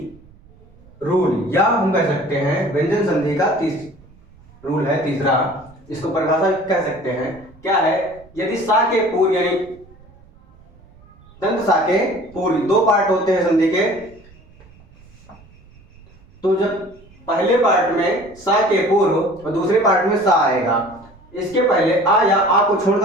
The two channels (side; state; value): right; noise; rumble, 26 dB below the sound